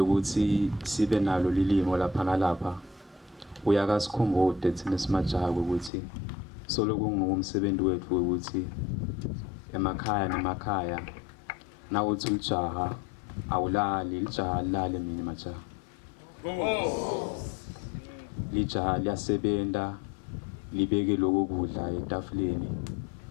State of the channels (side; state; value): right; drops out; at 5.9 s